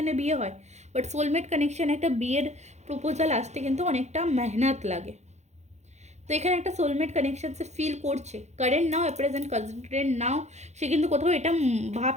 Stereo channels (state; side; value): late; left; 0.33 ms